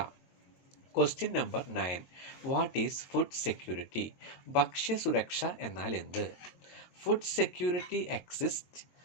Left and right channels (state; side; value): late; right; 22 ms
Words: Question number 9. What is food security? ഭക്ഷ്യസുരക്ഷ എന്നാൽ എന്ത്? Food security exists